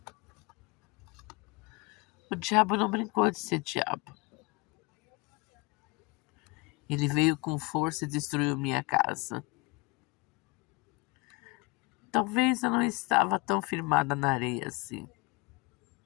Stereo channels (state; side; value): quieter; right; 26.7 dB